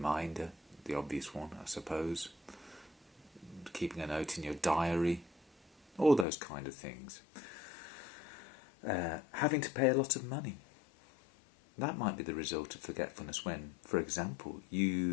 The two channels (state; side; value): drops out; right; at 6.2 s